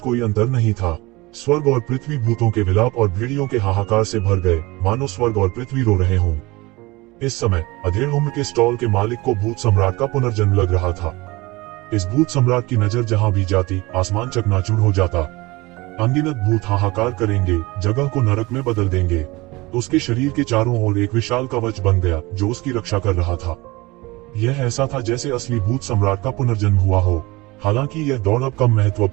अंतर नहीं था। स्वर्ग और पृथ्वी भूतों के विलाप और भेड़ियों के हाहाकार से भर गए, मानो स्वर्ग और पृथ्वी रो रहे हों। इस समय अधेड़ उम्र के स्टॉल के मालिक को भूत सम्राट का पुनर्जन्म लग रहा था। इस भूत सम्राट की नजर जहां भी जाती, आसमान चकनाचूर हो जाता। अनगिनत भूत हाहाकार करेंगे, जगह को नरक में बदल देंगे। उसके शरीर के चारों ओर एक विशाल कवच बन गया जो उसकी रक्षा कर रहा था। यह ऐसा था जैसे असली भूत सम्राट का पुनर्जन्म हुआ हो। हालांकि यह दौड़ अब कम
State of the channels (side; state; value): left; quieter; 22.1 dB